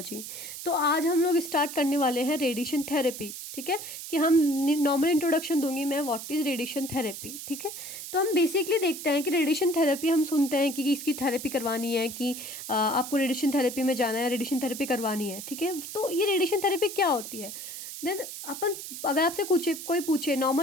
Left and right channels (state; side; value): noise; right; hiss, 9 dB below the sound